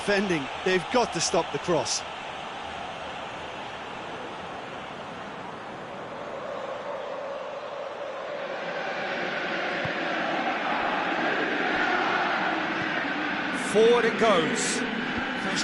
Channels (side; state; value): both; identical; correlation 1.00